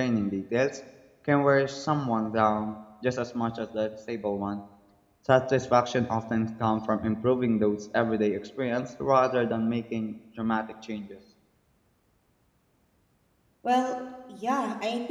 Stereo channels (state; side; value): identical; both; correlation 1.00